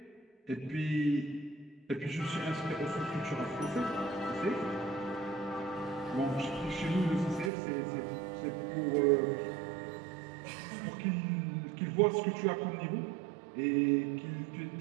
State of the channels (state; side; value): drops out; left; at 7.5 s